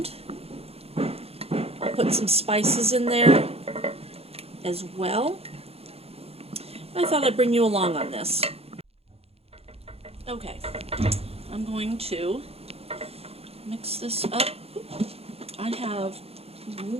I'll put some spices in there as well. I thought I'd bring you along on this. Okay, I'm going to mix this up. I have a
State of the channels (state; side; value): late; left; 0.29 ms